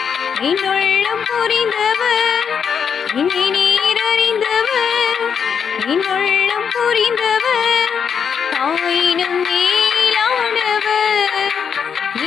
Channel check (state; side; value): quieter; right; 7.0 dB